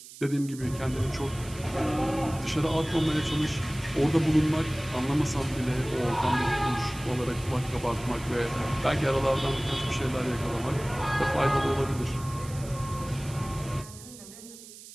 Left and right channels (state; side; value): noise; right; hiss, 17 dB below the sound